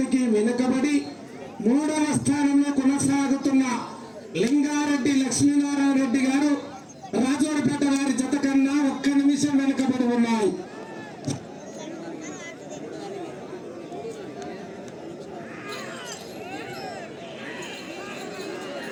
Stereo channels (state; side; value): identical; both; correlation 1.00